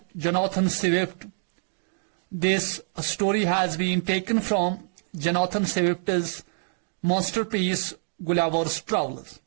Jonathan Swift. This story has been taken from Jonathan Swift's masterpiece Gulliver's Travels.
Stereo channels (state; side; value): silent; left; digital silence